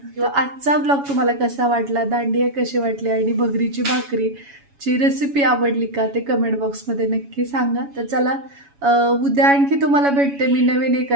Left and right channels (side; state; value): left; late; 7.1 ms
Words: आजचा ब्लॉग तुम्हाला कसा वाटला, दांडिया कशी वाटली आणि भगरीची भाकरीची रेसिपी आवडली का ते कमेंट बॉक्समध्ये नक्की सांगा. तर चला, उद्या आणखी तुम्हाला भेटते मी नवीन